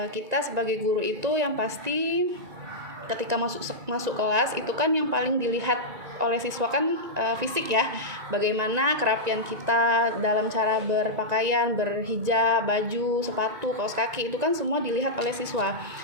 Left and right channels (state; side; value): late; left; 1.9 ms